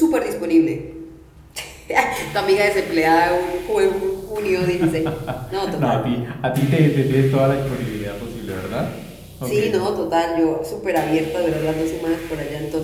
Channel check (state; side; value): identical; both; correlation 1.00